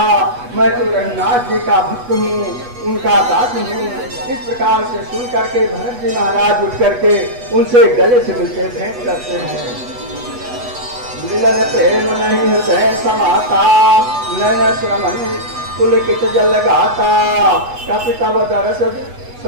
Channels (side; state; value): left; late; 8.2 ms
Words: मैं तो रघुनाथ जी का भक्त हूँ, उनका दास हूँ। इस प्रकार से सुन करके भरत जी महाराज उठ करके उनसे गले से मिलकर भेंट करते हैं। मिलन प्रेम नहीं हृदय समाता, नयन श्रमण पुलकित जल गाता। कपि तव दरस